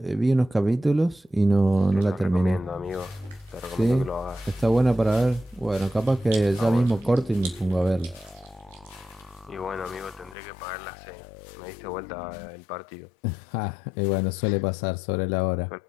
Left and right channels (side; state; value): right; drops out; at 10.4 s